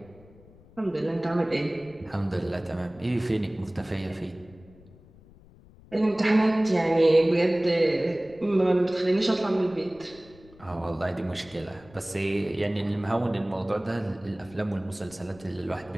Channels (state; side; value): noise; left; rumble, 24 dB below the sound